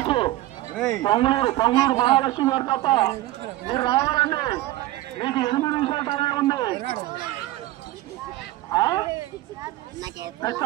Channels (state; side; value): quieter; left; 16.3 dB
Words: పొంగూరు మహాలక్ష్మి గారు తప్ప మీరు రావాలండి. మీకు 8 నిమిషాల టైం ఉంది.